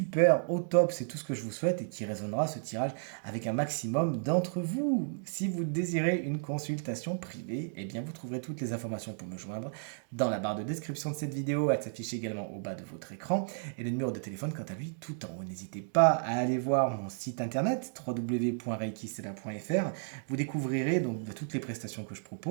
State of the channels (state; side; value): silent; left; digital silence